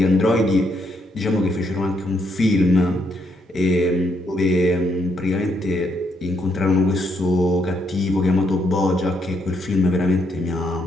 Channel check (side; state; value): both; normal; correlation 0.75